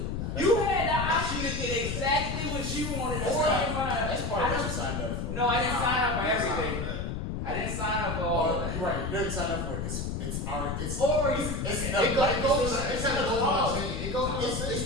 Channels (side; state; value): left; noise; rumble, 3 dB below the sound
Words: You had the option to get exactly what you wanted. That's part of what you signed up for. No, I didn't sign up for everything. I didn't sign up for all of that. You're right. You didn't sign up for it. It's the shit.